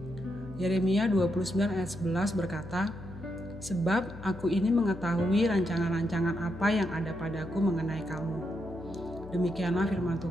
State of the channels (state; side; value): noise; left; hum, 14 dB below the sound